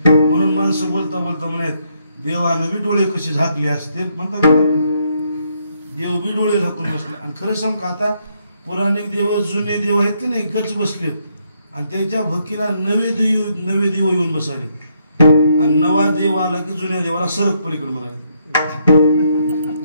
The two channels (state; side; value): inverted; both; correlation -0.75